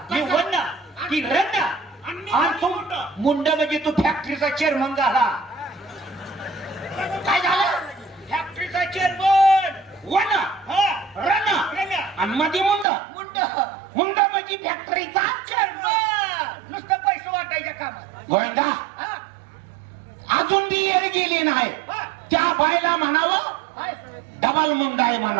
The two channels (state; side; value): drops out; left; at 12.9 s